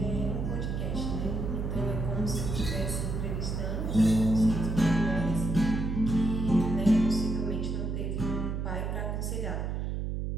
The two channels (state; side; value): noise; right; hum, 2 dB below the sound